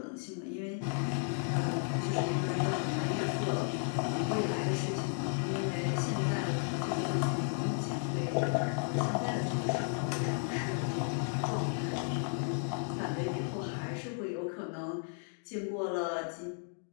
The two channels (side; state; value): right; silent; 55 dB below the other